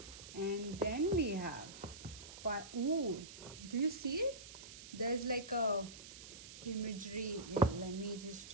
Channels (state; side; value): noise; right; hiss, 14 dB below the sound